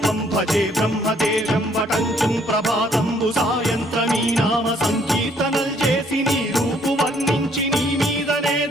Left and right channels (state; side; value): normal; both; correlation 0.65